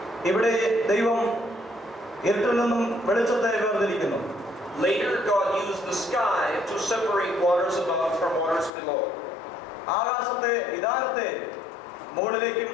ഇവിടെ ദൈവം ഇരുട്ടിൽ നിന്നും വെളിച്ചത്തെ വേർതിരിക്കുന്നു. Later God used the sky to separate waters above from waters below. ആകാശത്തെ വിധാനത്തെ മുകളിലേക്കും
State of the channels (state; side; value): drops out; right; at 8.7 s